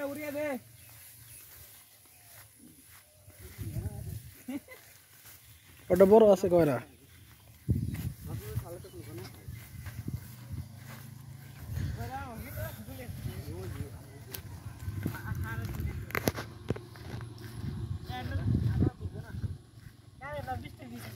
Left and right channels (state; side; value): identical; both; correlation 1.00